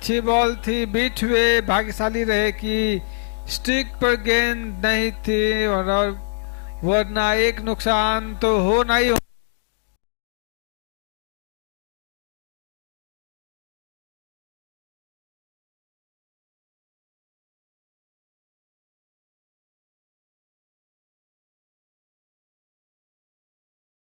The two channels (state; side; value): silent; right; digital silence